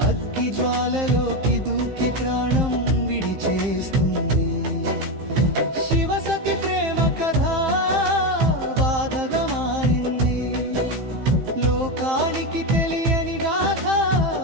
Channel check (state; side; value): late; left; 15 ms